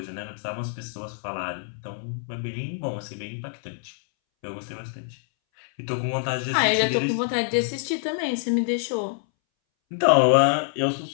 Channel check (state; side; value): silent; right; 61 dB below the other